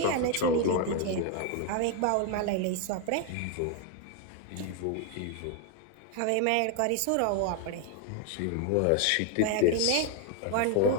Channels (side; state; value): both; different; correlation 0.01